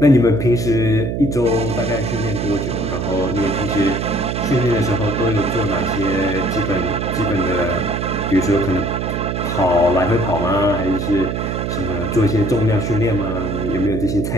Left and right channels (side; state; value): right; noise; hum, 2 dB below the sound